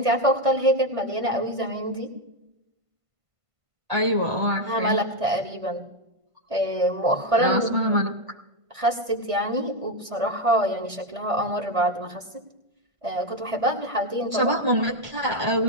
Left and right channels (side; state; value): left; late; 1.5 ms